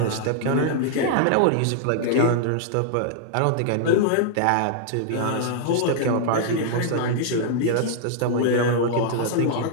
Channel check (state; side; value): different; both; correlation -0.01